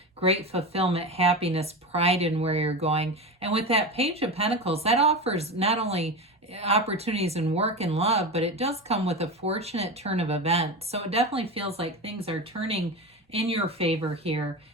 great fulfillment, happiness, pride in where you're going. And with that Page of Pentacles, that offers not only opportunities in work and love, but it does come with a fortunate turn of events. So it definitely feels like things are turning in your favor here.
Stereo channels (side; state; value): both; normal; correlation 0.23